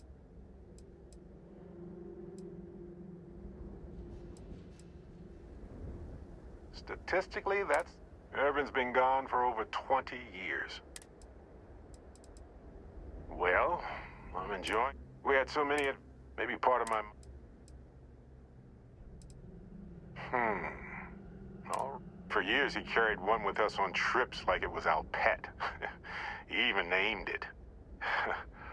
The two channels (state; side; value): identical; both; correlation 1.00